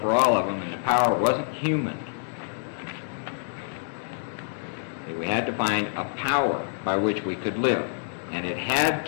for all of them, and the power wasn't human. See? We had to find a power by which we could live, and it had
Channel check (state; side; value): silent; right; digital silence